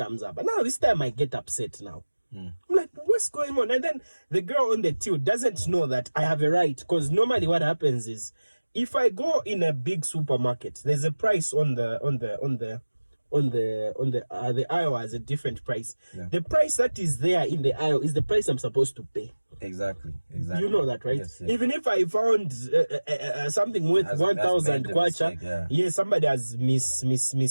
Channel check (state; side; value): inverted; both; correlation -1.00